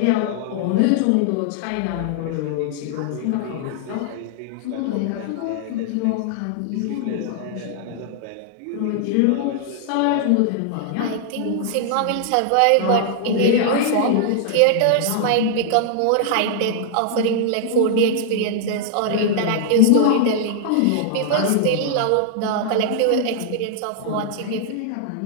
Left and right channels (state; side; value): different; both; correlation -0.01